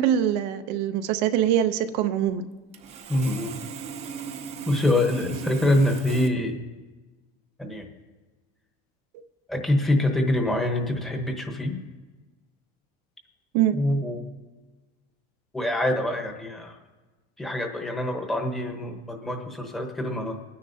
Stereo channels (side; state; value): both; normal; correlation 0.53